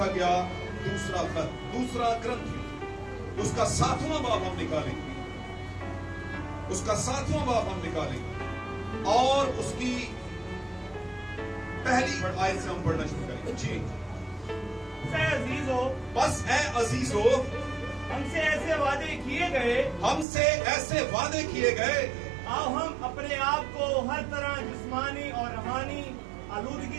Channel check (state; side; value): drops out; left; at 20.2 s